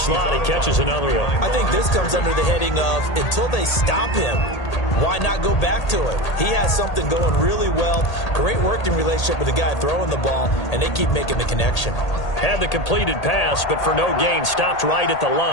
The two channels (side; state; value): right; late; 1.8 ms